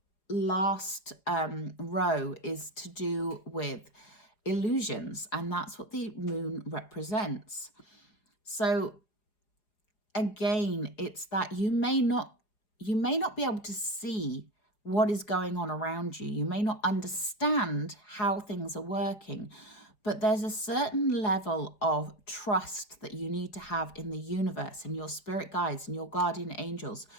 last row is to do with illusions, and that's what the moon represents. So again, it's that you may not be able to see what is going on around you. You may not understand how things are working, but there's a certain level of trust that you need to have in the universe and your spirit guides and your guardian angels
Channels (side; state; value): right; late; 4.9 ms